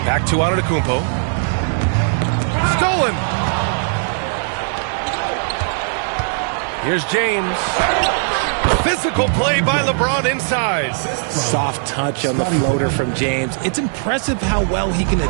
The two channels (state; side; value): silent; left; digital silence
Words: Back to Antetokounmpo. Stolen. Here's James. Physical play by LeBron inside. Soft touch on the floater from James. It's impressive how well he can